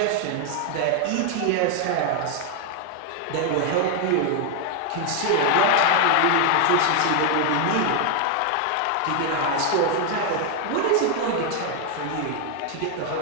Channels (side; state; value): both; different; correlation 0.01